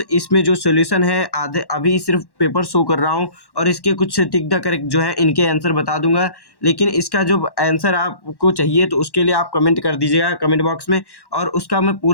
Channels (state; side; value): late; right; 1.1 ms